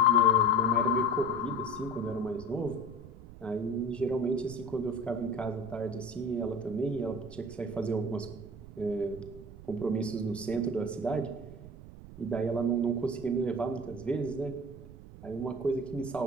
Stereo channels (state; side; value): noise; right; rumble, 16 dB below the sound